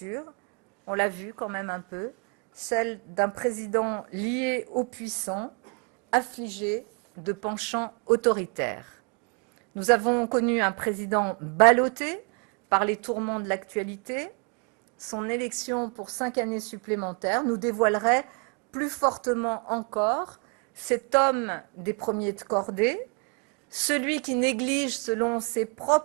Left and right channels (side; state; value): left; quieter; 37.8 dB